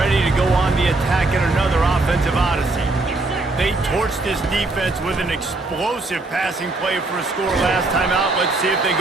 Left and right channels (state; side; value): quieter; left; 3.1 dB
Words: to go on the attack in another offensive odyssey. They torched this defense with an explosive passing play for a score last time out. Let's see if they